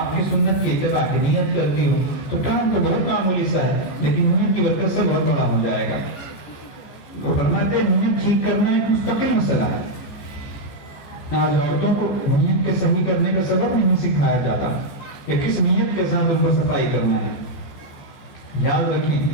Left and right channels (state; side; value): late; right; 14 ms